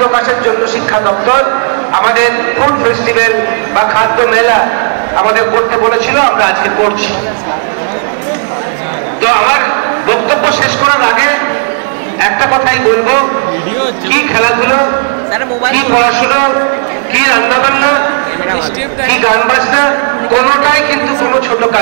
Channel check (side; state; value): left; silent; 59 dB below the other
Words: জন্য শিক্ষা দপ্তর আমাদের ফুড ফেস্টিভ্যাল বা খাদ্য মেলা আমাদের করতে বলেছিল, আমরা আজকে করছি। তো আমার বক্তব্য শেষ করার আগে একটা কথাই বলবো, কি খেলাধুলো, কি পড়াশুনো, কি রান্নাবান্না, কি গান বাজনা, কোনোটাই কিন্তু কোনো ছোট